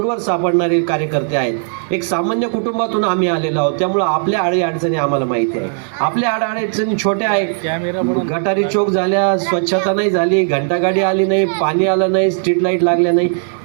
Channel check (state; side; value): silent; left; digital silence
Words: सापडणारे कार्यकर्ते आहेत. एक सामान्य कुटुंबातून आम्ही आलेलो आहोत, त्यामुळं आपल्या अडचणी आम्हाला माहिती आहे. आपल्या अडचणी छोट्या आहेत. गटारी चोक झाल्या, स्वच्छता नाही झाली, घंटागाडी आली नाही, पाणी आलं नाही, स्ट्रीट लाईट लागल्या नाही,